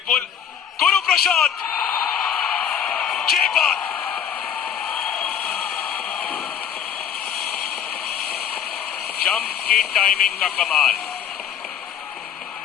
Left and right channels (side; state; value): right; quieter; 8.8 dB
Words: गुरु प्रसाद, ये बात। जंप की टाइमिंग का कमाल,